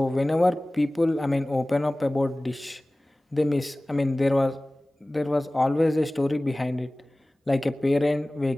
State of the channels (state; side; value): normal; both; correlation 0.98